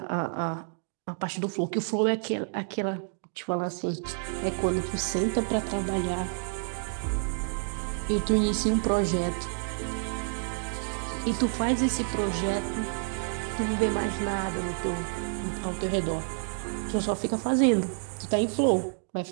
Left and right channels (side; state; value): left; silent; digital silence